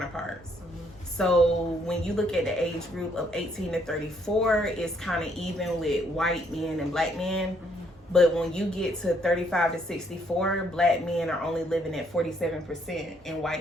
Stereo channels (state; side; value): normal; both; correlation 0.69